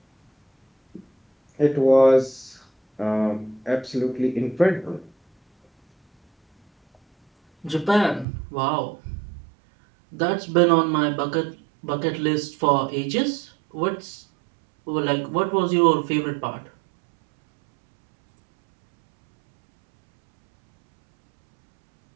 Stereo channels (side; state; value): left; drops out; at 8.2 s